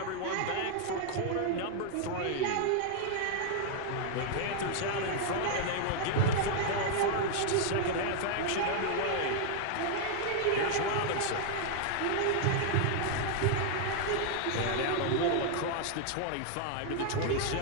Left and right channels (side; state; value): both; different; correlation 0.00